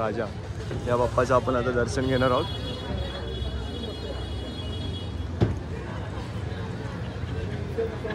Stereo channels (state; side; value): identical; both; correlation 1.00